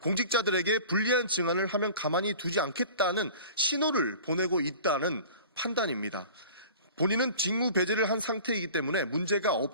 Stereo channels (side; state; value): both; inverted; correlation -0.42